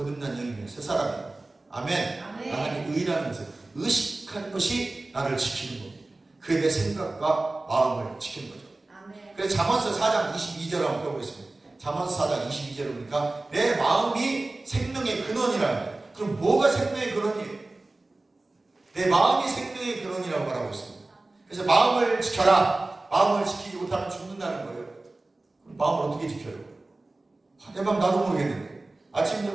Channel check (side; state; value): left; quieter; 3.0 dB